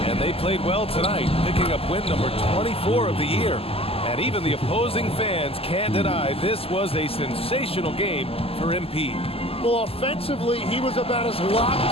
And they played well tonight, picking up win number 24 of the year. And even the opposing fans can't deny this was a sensational game for MP. Well, offensively, he was about as locked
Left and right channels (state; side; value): late; right; 0.28 ms